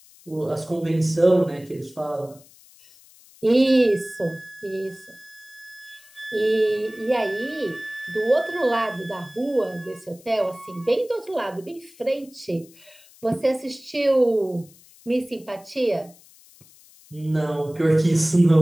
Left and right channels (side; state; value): left; noise; hiss, 25 dB below the sound